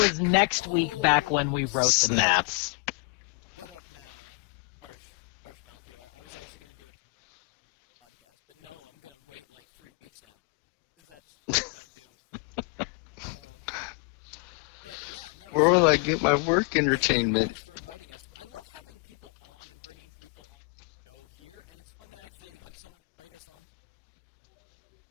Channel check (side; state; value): right; quieter; 32.6 dB